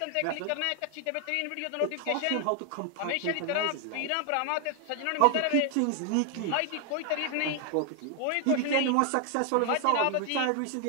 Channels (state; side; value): different; both; correlation 0.00